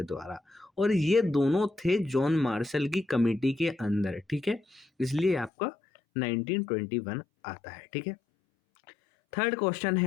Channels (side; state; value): right; drops out; at 5.5 s